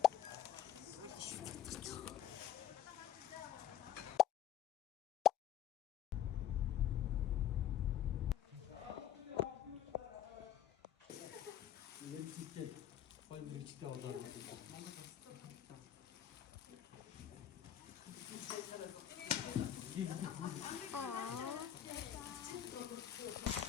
Электриктэй гоё мэрэгчтэй болоод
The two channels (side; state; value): right; quieter; 10.7 dB